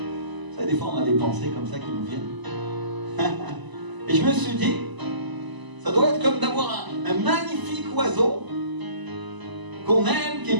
savez, des fois on a des pensées comme ça qui nous viennent. Et je me suis dit, ça doit être comme d'avoir un magnifique oiseau qu'on aime, qui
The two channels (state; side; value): late; left; 1.0 ms